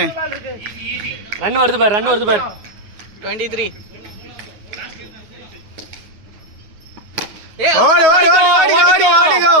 ரன் வருது பாரு 23. ஓடு ஓடு ஓடு ஓடி ஓடி ஓடிகோ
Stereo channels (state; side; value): late; left; 9.4 ms